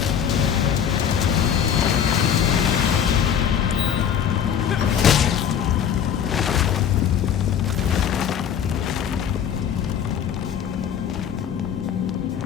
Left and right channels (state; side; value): quieter; right; 8.5 dB